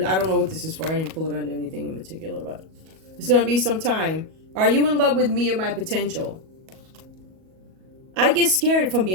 I don't know what this is for. I didn't pull it under anything in particular, but it's going to be some time. Are you in love with me or my potential? I get scared, if I'm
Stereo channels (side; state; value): left; late; 37 ms